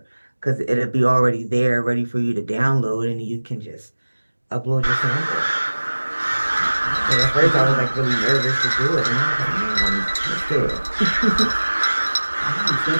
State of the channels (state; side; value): inverted; both; correlation -1.00